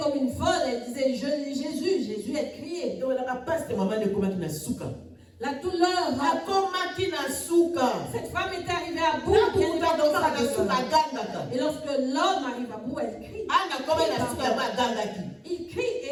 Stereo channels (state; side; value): identical; both; correlation 1.00